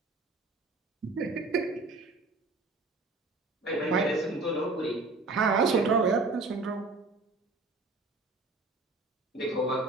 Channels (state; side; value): quieter; left; 3.4 dB